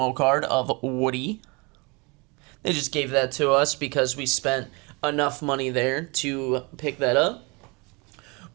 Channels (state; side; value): quieter; left; 28.7 dB